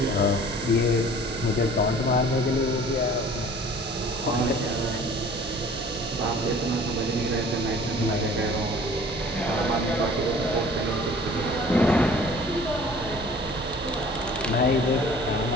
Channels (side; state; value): both; normal; correlation 0.49